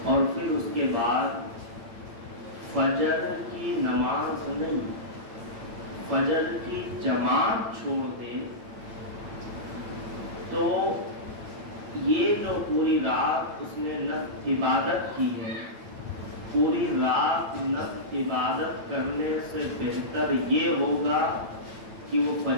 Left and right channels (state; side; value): late; left; 8.9 ms